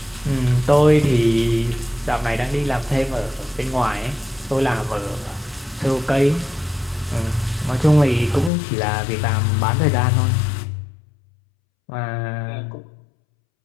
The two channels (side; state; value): right; drops out; at 8.5 s